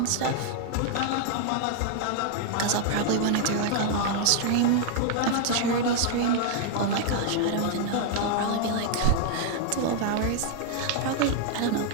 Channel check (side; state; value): both; different; correlation 0.00